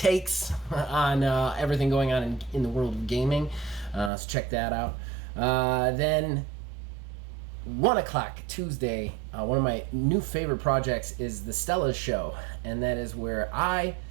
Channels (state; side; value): drops out; left; at 4.1 s